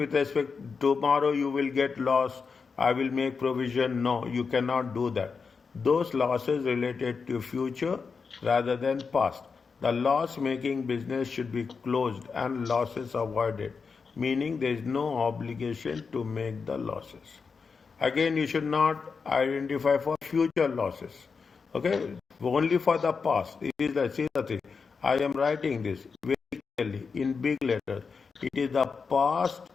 respect, tomorrow you will get loss, I will make provision. No, you cannot do that. Those losses related to future rather than past. The loss making business should be closed and losses avoided, meaning there is no obligation to make the losses. Again, you should not identify for future losses. Okay, only for the past. It is the, see the thing. I am writing this very clearly in big letters. It is the past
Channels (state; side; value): quieter; right; 5.2 dB